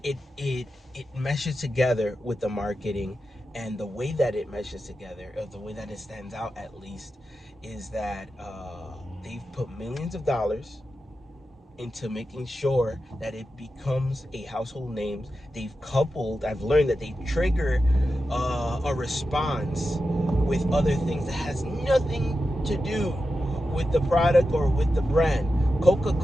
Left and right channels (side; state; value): both; normal; correlation 0.91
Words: It meshes together with the marketing, and the way that it meshes together, or the way that it stands out at least, is that they've put millions of dollars into making sure that it becomes a household name. I've learned that they trigger a response with other things that has nothing to do with the product or with the brand.